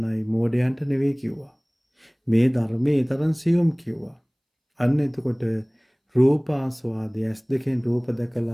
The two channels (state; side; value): identical; both; correlation 1.00